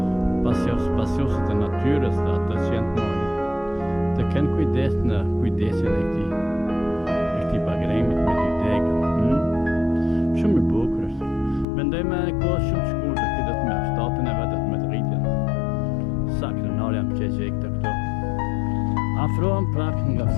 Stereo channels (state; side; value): drops out; right; at 11.7 s